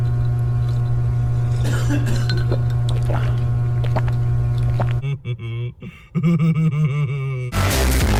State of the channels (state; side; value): identical; both; correlation 1.00